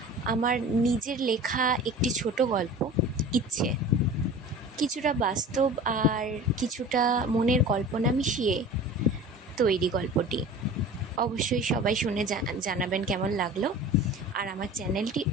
আমার নিজের লেখা একটি ছোট গল্প, ইচ্ছে। কিছুটা বাস্তব আর কিছুটা মনের কল্পনা মিশিয়ে তৈরি গল্পটি। অবশ্যই সবাই শুনে জানাবেন কেমন লাগলো, আর আমার চ্যানেলটি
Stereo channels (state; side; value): normal; both; correlation 0.38